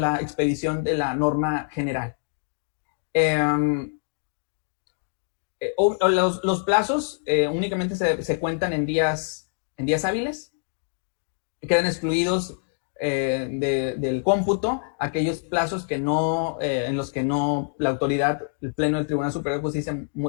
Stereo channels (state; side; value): silent; right; digital silence